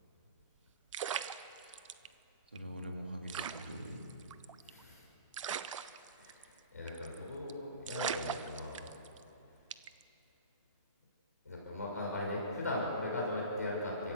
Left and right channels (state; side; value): inverted; both; correlation -0.39